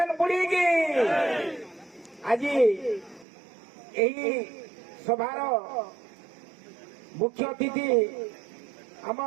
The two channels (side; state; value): left; drops out; at 3.2 s